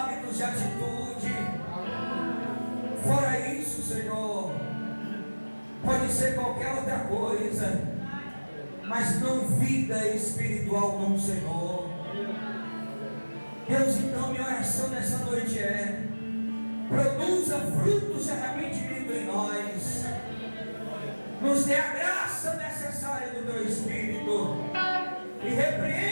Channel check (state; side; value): inverted; both; correlation -1.00